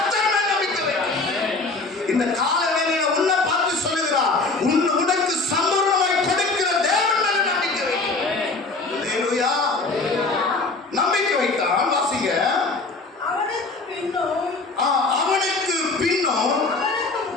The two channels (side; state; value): right; quieter; 3.6 dB